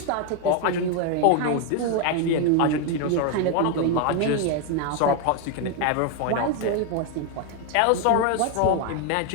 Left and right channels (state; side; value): different; both; correlation 0.01